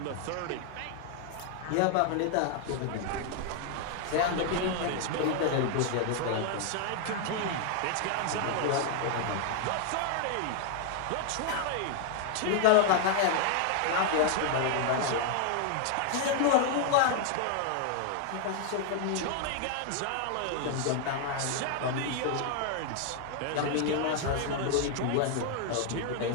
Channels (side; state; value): both; different; correlation 0.00